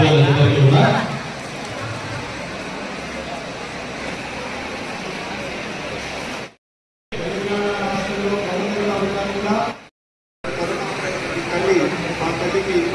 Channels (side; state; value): both; identical; correlation 1.00